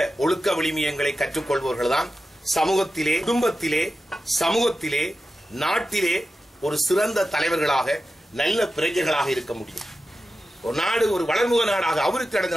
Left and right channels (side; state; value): both; normal; correlation 0.92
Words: ஒழுக்க விழுமியங்களை கற்றுக்கொள்பவர்கள் தான் சமூகத்திலே, குடும்பத்திலே, சமூகத்திலே, நாட்டிலே ஒரு சிறந்த தலைவர்களாக நல்ல பிரஜைகளாக இருக்க முடியும். ஒரு நாடு ஒரு வளர்முக நாடாக, அபிவிருத்தி அடைந்த